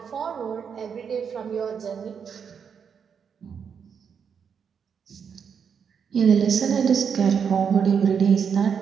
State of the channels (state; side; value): quieter; left; 6.9 dB